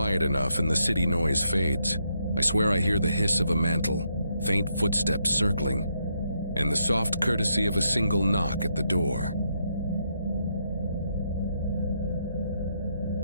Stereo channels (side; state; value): both; inverted; correlation -0.78